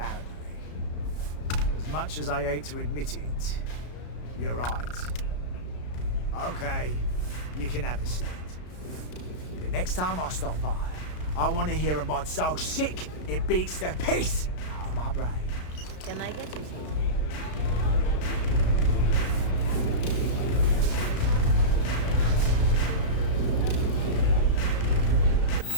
As much as I hate to admit it, you're right. Okay, you can have the slate. But next time I stop by, I want to hear a mod so sick it beats the piss out of my brain. Can I get you something?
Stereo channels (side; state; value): right; late; 33 ms